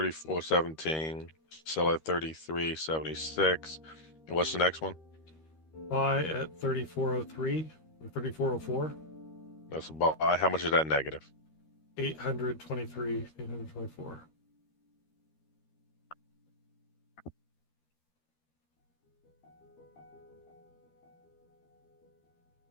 sell at 33.76. And what's the next one? Buy at 3403 or 3404. That's a buy. How much is that negative? 823. 824.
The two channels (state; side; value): late; right; 13 ms